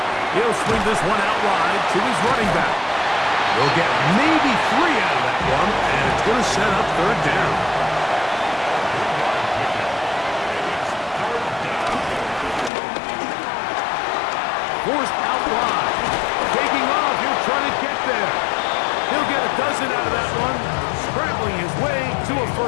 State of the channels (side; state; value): right; drops out; at 12.7 s